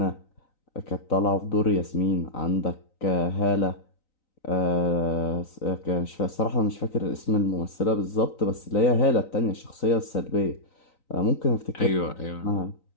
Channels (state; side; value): late; right; 3.9 ms